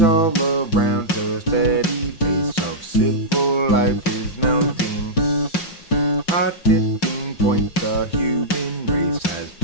all around the steady face of civil life is mounting. A tipping point the human race has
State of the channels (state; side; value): late; right; 5.5 ms